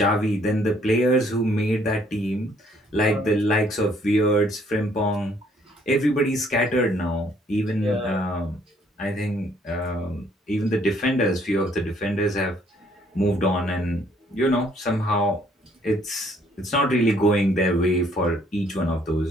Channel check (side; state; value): both; normal; correlation 0.64